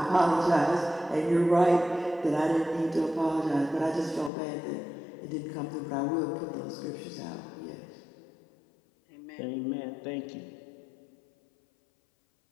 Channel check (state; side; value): drops out; right; at 4.3 s